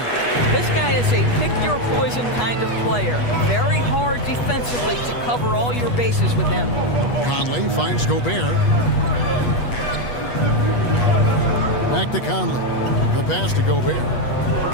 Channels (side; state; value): right; late; 8.3 ms